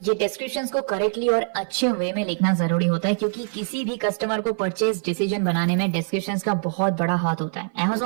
ये डिस्क्रिप्शंस को करेक्टली और अच्छे वे में लिखना जरूरी होता है क्योंकि किसी भी कस्टमर को परचेज डिसीजन बनाने में डिस्क्रिप्शंस का बहुत बड़ा हाथ होता है।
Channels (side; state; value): left; silent; 56 dB below the other